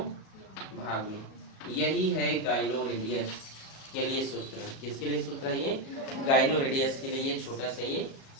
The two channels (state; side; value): late; right; 37 ms